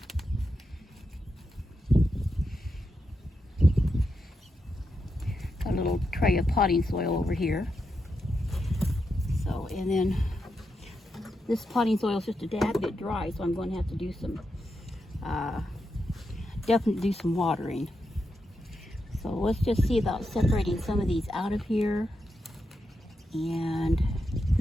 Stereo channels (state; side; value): normal; both; correlation 0.86